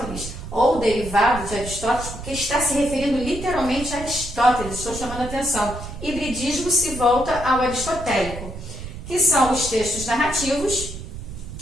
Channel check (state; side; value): noise; right; rumble, 10 dB below the sound